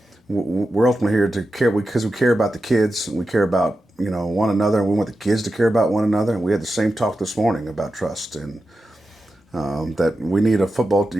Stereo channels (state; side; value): normal; both; correlation 0.91